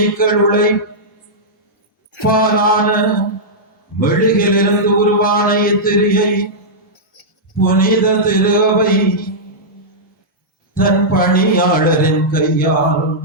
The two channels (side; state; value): both; normal; correlation -0.11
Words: பாலான மெழுகிலிருந்து உருவான இத்திரியை புனித திருவை தன் பணியாளரின் கையால்